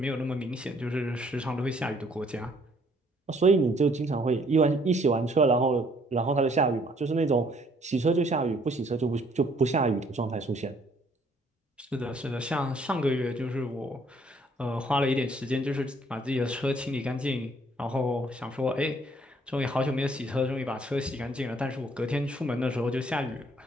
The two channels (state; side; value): normal; both; correlation 0.63